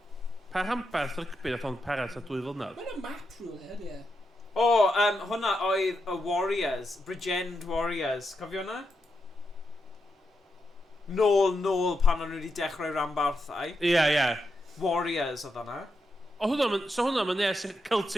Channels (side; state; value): both; normal; correlation 0.85